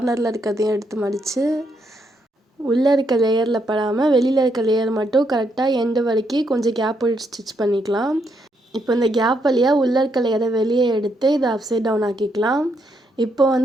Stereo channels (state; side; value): normal; both; correlation 0.77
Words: இருக்கிறதையும் எடுத்து மடித்து உள்ளே இருக்க லேயரில் படாமல் வெளியில் இருக்க லேயர் மட்டும் கரெக்டாக எண்டு வரைக்கும் கொஞ்சம் கேப் விட்டு ஸ்டிச் பண்ணிக்கலாம். இப்போ இந்த கேப் வழியாக உள்ளே இருக்க லேயரை வெளியே எடுத்து இதை அப்சைட் டவுன் ஆக்கிக்கலாம். இப்போ